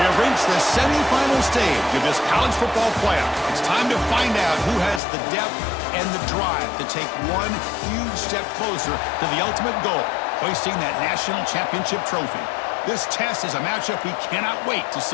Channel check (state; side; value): drops out; right; at 5.0 s